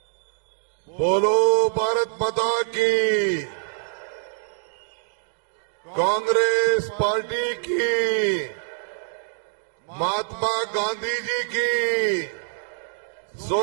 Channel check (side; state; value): left; silent; digital silence